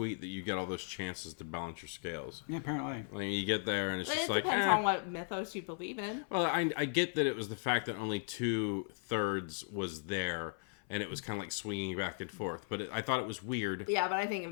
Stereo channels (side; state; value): right; silent; 53 dB below the other